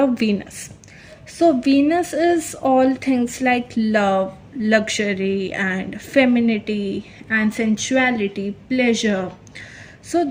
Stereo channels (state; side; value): identical; both; correlation 1.00